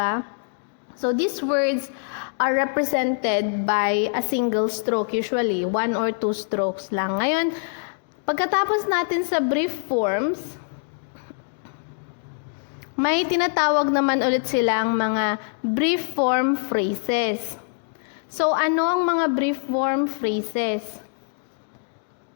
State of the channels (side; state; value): right; silent; digital silence